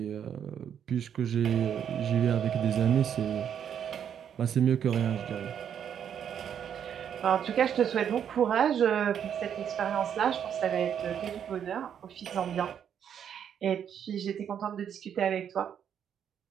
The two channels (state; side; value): quieter; left; 8.7 dB